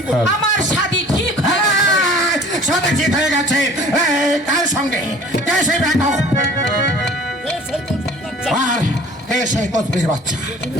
আমার শাদী ঠিক হয়ে গেছে। কার সঙ্গে? কে সেই বেগম? আর কে সেই কসবির বাচ্চা?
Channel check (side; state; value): both; normal; correlation 0.48